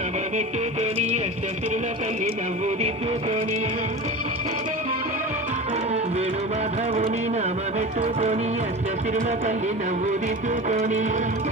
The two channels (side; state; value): both; normal; correlation 0.30